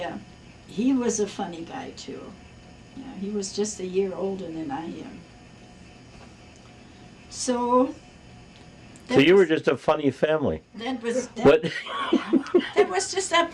he was a funny guy too. Yeah, he was just a year older than I am. So you were just a funny family. That was What? that was just a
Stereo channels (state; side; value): identical; both; correlation 1.00